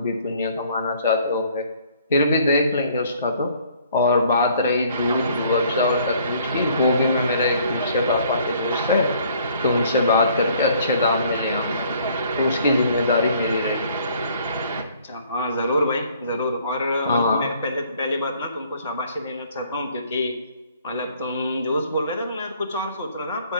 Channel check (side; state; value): both; inverted; correlation -0.60